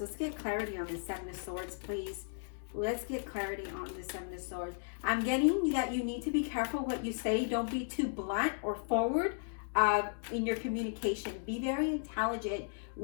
Let's get clarity on the Seven of Swords, please. Let's get clarity on the Seven of Swords. I'm getting that you need to be careful what you say. Don't be too blunt or forward in your communication. Be very intelligent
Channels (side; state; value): right; silent; digital silence